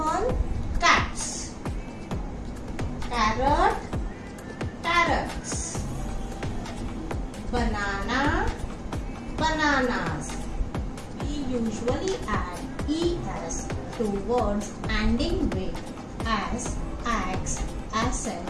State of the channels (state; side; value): identical; both; correlation 1.00